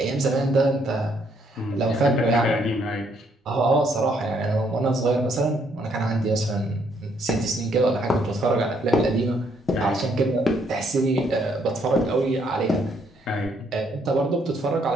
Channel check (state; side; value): normal; both; correlation 0.70